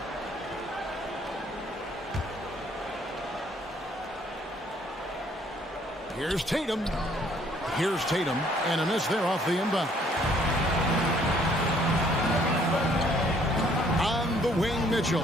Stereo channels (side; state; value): both; normal; correlation 0.63